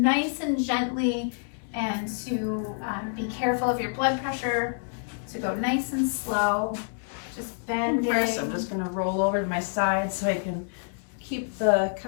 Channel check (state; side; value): silent; right; digital silence